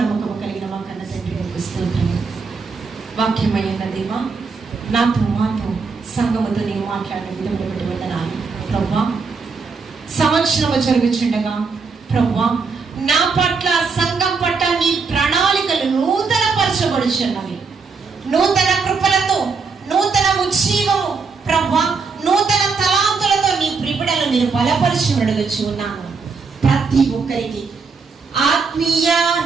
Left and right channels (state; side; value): quieter; left; 4.9 dB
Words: నమ్మకం కలిగిన మా కన్న తండ్రి స్తోత్రము. వాక్యమైన దేవా, మాతో సంఘముతో నేను మాట్లాడిన విధంగా బట్టి వందనాలు ప్రభువా. సంవత్సరము జరుగుచుండగా ప్రభువా, నా పట్ల, సంఘం పట్ల నీ ప్రణాళికలు నూతన పరచబడుచున్నవి. నూతన కృపలతో, నూతన ఉజ్జీవము ప్రభువా, నూతన తలాంతులతో నీ ప్రిబిడలు నేను బలపరిచి అడుగుచు ఉన్నాను. ప్రతి ఒక్కరికి ఆత్మీయ